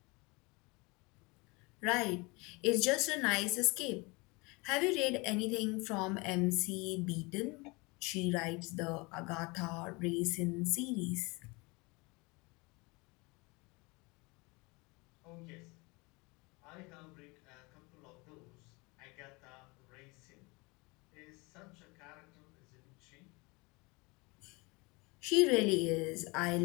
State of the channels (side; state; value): right; quieter; 26.6 dB